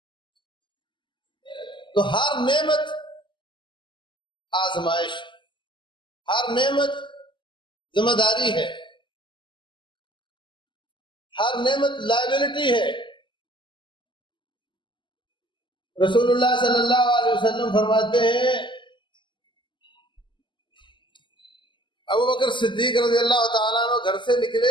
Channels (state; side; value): late; right; 0.24 ms